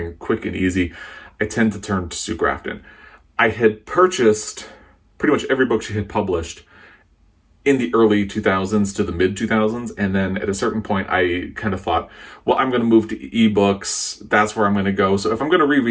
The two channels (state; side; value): identical; both; correlation 1.00